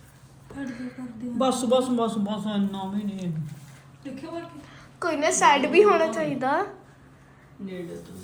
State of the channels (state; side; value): identical; both; correlation 1.00